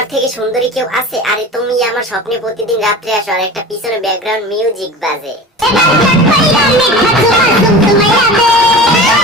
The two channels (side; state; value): both; normal; correlation 0.35